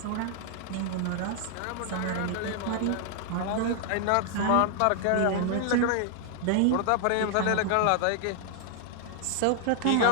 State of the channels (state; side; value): different; both; correlation 0.00